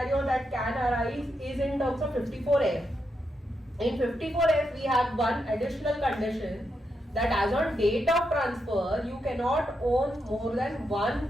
that can arise is in terms of 54F. In 54F, we have one additional condition that as on date of transfer, you cannot own more than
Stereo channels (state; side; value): normal; both; correlation 0.83